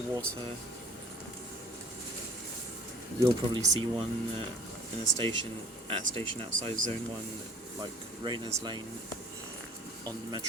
You'll probably see one in a station outside Zone 1, like Rayners Lane on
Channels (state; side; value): normal; both; correlation 0.49